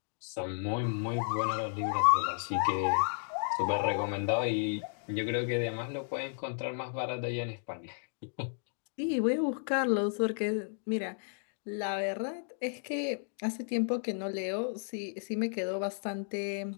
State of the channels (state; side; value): silent; right; digital silence